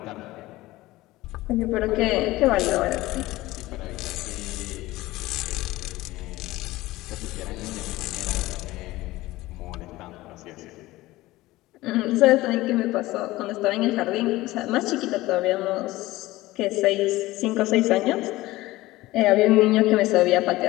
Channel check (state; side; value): quieter; right; 18.2 dB